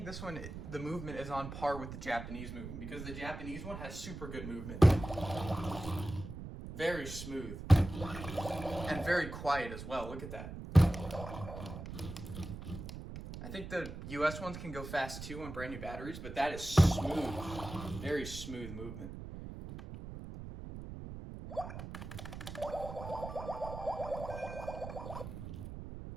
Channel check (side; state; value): right; noise; rumble, 9 dB below the sound